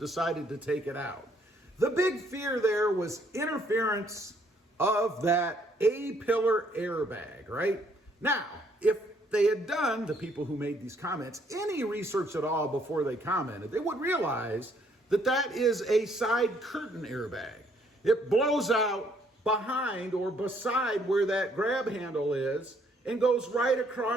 to take it out. The big fear there was interference of that A-pillar airbag, right? Now, if they had done, the people who made these comments, any research at all before they commented, they would realize that that is a side curtain airbag. It blows out behind or beside where that grab handle is and goes right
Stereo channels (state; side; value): normal; both; correlation 0.67